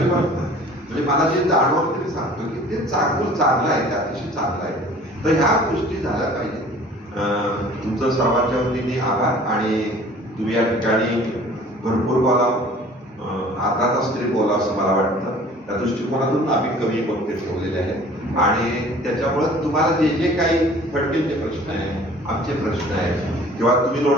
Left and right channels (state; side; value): normal; both; correlation 0.49